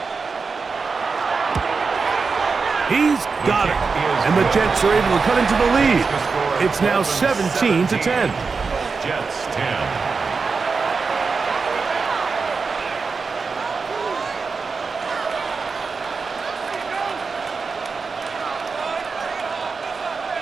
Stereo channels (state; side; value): quieter; left; 4.8 dB